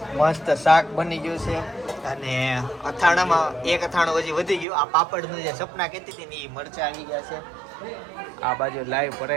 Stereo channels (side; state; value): left; drops out; at 4.7 s